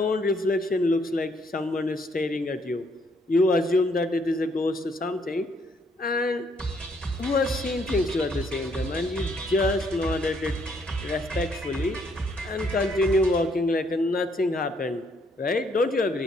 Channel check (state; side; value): normal; both; correlation 0.69